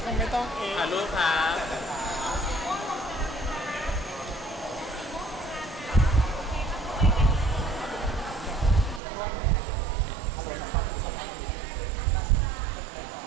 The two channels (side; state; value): left; drops out; at 9.0 s